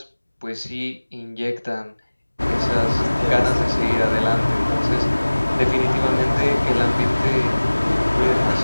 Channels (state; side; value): inverted; both; correlation -1.00